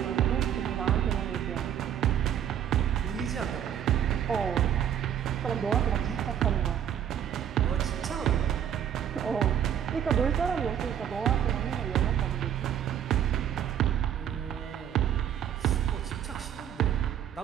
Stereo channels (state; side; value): quieter; left; 9.7 dB